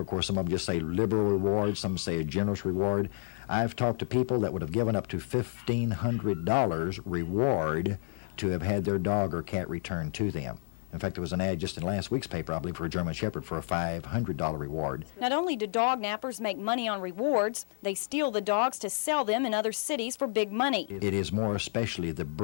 Of course, some of them just say liberal reward, some say a generous reward. I've talked to people that would have given up to $1,500 reward to have had their dog or cat returned to them. In fact, there was an ad just in last week's paper, I believe, for a German Shepherd for a $500 reward. Not only do dog nappers make money on rewards, they steal the dogs to sell them in other cities for big money. It is more especially the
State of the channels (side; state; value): right; silent; digital silence